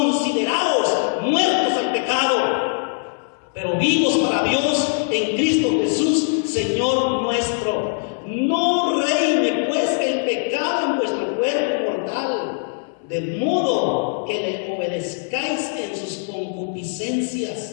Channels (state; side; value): silent; right; 60 dB below the other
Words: muertos al pecado, pero vivos para Dios en Cristo Jesús, Señor nuestro. No reine pues el pecado en vuestro cuerpo mortal, de modo que le obedezcáis en sus